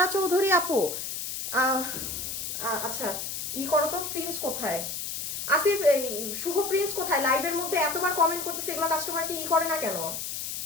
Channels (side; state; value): left; noise; hiss, 5 dB below the sound